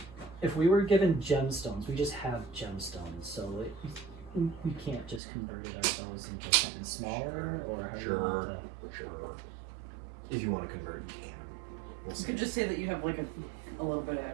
if we were given gemstones, we just have gemstones, so we can't just convert it ourselves into something smaller, or how do you want to? Sure. If you want to convert, you can. We'll You say could it. just say that you have like a little bit of If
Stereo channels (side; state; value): left; drops out; at 5.2 s